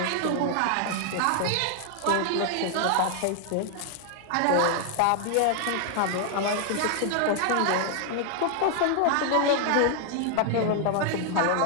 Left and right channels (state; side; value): different; both; correlation 0.00